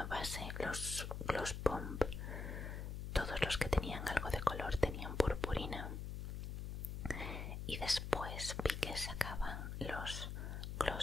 base, los Gloss Bomb, todos los que tenían algo de color tenían purpurina. Y después vi que sacaban los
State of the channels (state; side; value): noise; left; hum, 5 dB below the sound